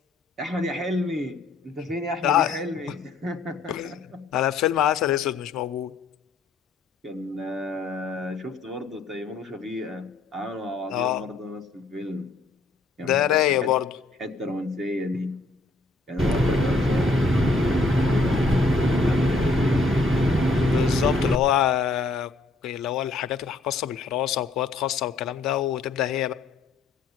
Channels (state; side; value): quieter; right; 3.4 dB